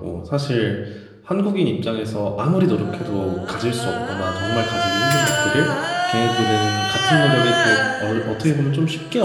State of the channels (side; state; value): both; identical; correlation 1.00